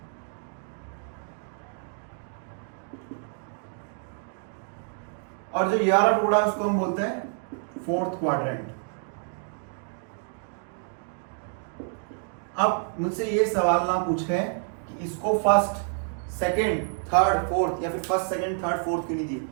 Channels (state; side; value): silent; left; 59 dB below the other